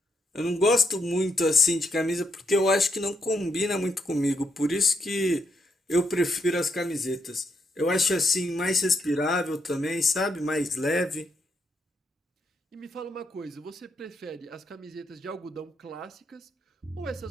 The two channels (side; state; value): both; normal; correlation 0.78